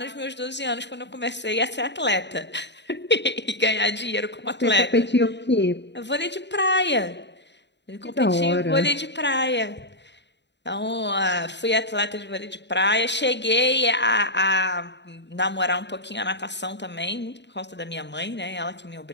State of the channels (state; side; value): late; right; 0.51 ms